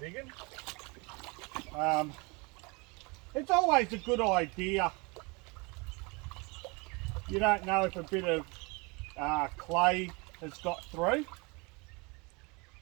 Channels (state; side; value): quieter; left; 28.5 dB